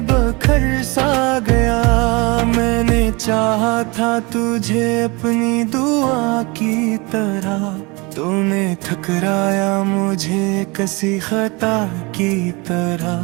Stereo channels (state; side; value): quieter; left; 26.7 dB